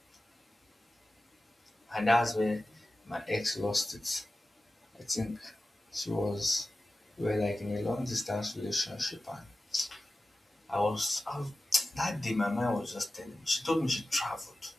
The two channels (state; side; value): normal; both; correlation 0.95